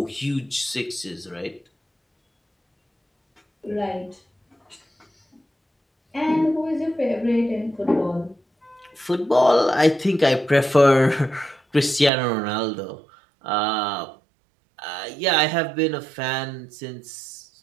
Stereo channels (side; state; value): left; drops out; at 12.1 s